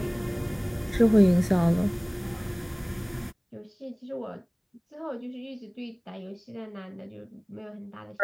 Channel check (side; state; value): both; identical; correlation 1.00